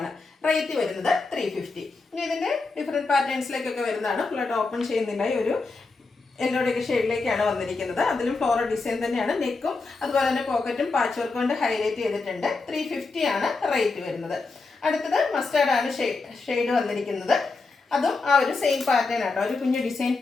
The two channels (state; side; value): quieter; right; 3.9 dB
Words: റേറ്റ് വരുന്നത് 350. ഇനി ഇതിൻ്റെ ഡിഫറെൻറ്റ് പാറ്റേൺസിലേക്കൊക്കെ വരുന്നതാണ്. ഫുള്ളായിട്ട് ഓപ്പൺ ചെയ്യുന്നില്ല. ഈ ഒരു യെല്ലോടെയൊക്കെ ഷെയ്ഡിലേക്കാണ് വന്നിരിക്കുന്നത്. അതിലും ഫ്ലോറൽ ഡിസൈൻ തന്നെയാണ്. നെക്കും അതുപോലെ തന്നെ പോക്കറ്റും പാച്ച് വർക്ക് കൊണ്ട് ഹൈലൈറ്റ് ചെയ്തിട്ടുണ്ട്. 350 ആണ് റേറ്റ് വരുന്നത്. അടുത്തത് മസ്റ്റാർഡ് ആണ് ഷെയ്ഡ് വന്നിരിക്കുന്നത്. അതും ആ ഒരു സെയിം പാറ്റേൺ ആട്ടോ. ഒരു കുഞ്ഞു ഡിസൈൻ